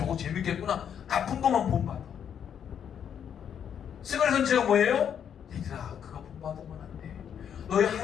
재밌겠구나. 나쁜 것만 본받아. 스가랴 선지자가 뭐예요? 얘들아 그거 본받으면 안 돼. 너희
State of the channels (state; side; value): quieter; right; 8.5 dB